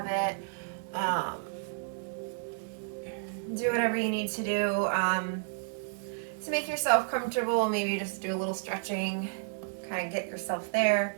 it. Do whatever you need to do to make yourself comfortable. Maybe just do a little stretching, kind of get yourself there.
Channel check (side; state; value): left; silent; digital silence